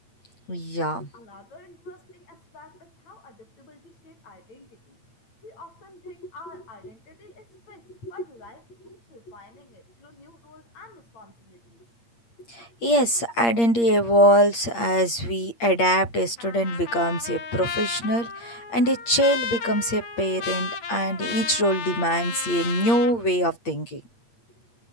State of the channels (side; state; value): right; late; 8.6 ms